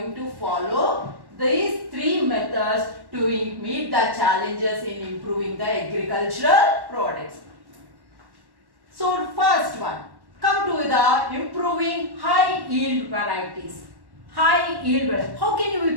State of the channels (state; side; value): late; left; 1.1 ms